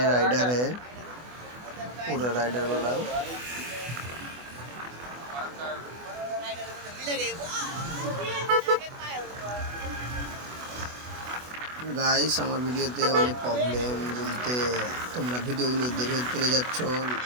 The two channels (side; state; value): left; late; 24 ms